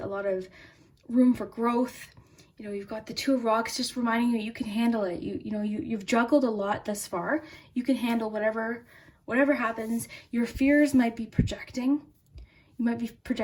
lot of room for growth. You've got the Two of Rocks just reminding you can handle it. You've juggled a lot thus far. You can handle whatever happens. Your fears might be projecting. You might be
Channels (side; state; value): both; identical; correlation 1.00